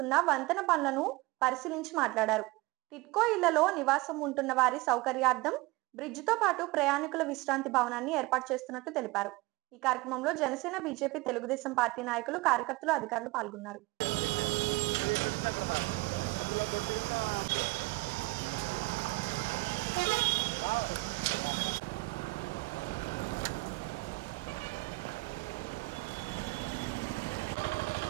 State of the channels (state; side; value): quieter; left; 22.3 dB